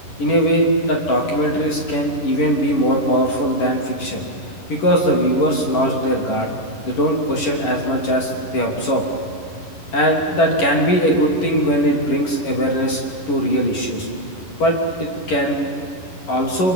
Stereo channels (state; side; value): late; right; 11 ms